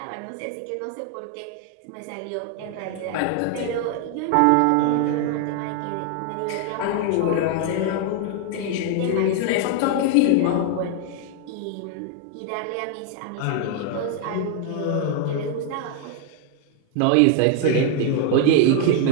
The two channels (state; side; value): different; both; correlation 0.00